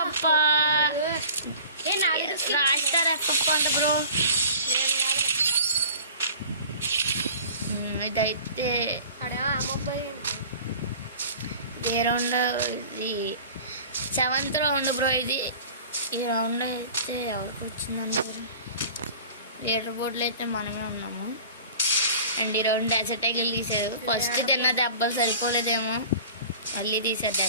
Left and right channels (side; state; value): both; inverted; correlation -0.42